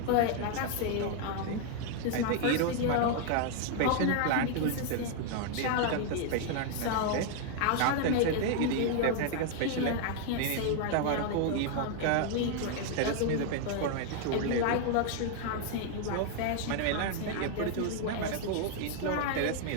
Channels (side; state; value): both; different; correlation 0.00